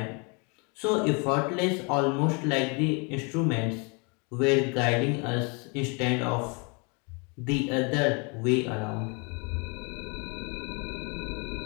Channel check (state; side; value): quieter; right; 32.9 dB